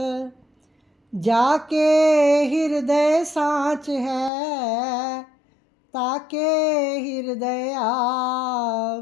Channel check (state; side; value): drops out; right; at 4.3 s